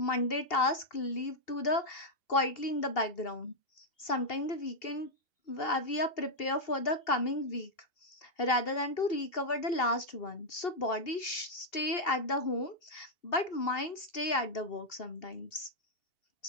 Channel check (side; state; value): right; late; 2.8 ms